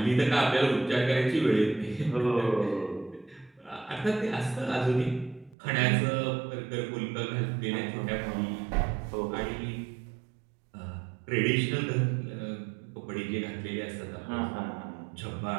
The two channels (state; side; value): drops out; left; at 5.6 s